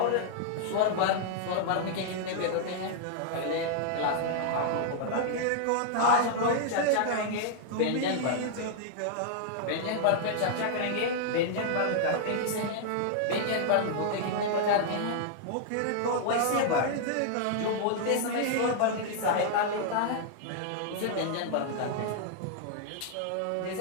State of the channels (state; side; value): different; both; correlation -0.01